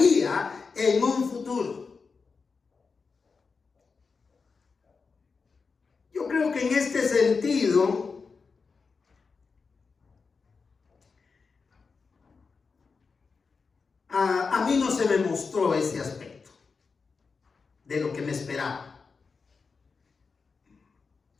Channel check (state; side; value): quieter; right; 4.9 dB